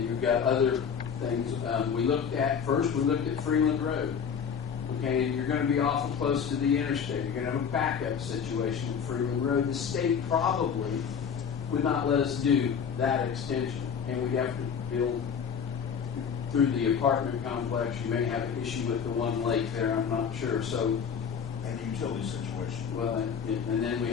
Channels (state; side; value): quieter; right; 7.0 dB